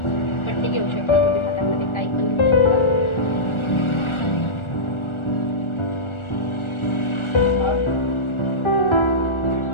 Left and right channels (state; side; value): late; right; 1.4 ms